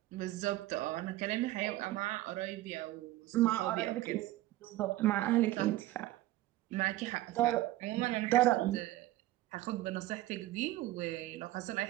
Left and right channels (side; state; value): left; quieter; 16.2 dB